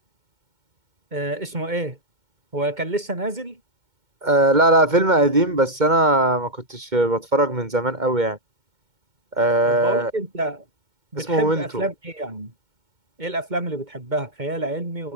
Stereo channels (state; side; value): late; left; 2.2 ms